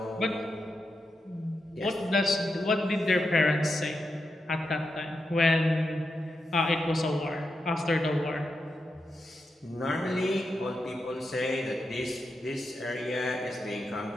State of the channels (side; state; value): both; normal; correlation 0.87